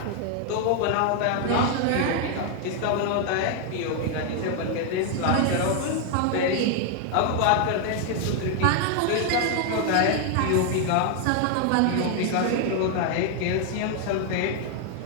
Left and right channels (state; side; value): different; both; correlation 0.00